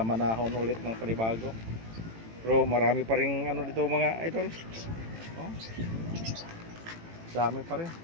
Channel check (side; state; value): left; late; 18 ms